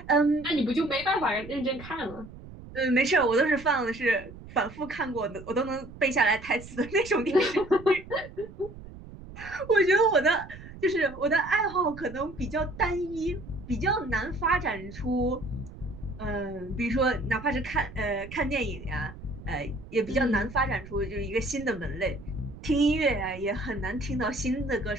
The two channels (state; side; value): noise; right; rumble, 16 dB below the sound